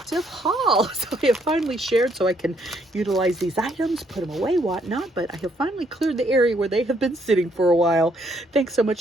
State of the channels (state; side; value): normal; both; correlation 0.70